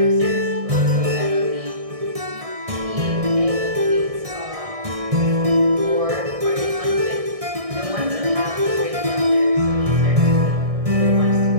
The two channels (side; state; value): left; late; 1.6 ms